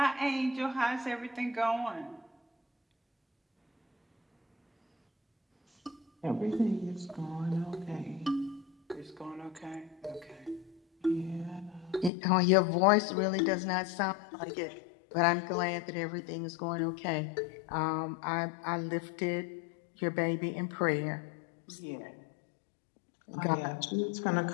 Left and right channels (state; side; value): drops out; right; at 12.1 s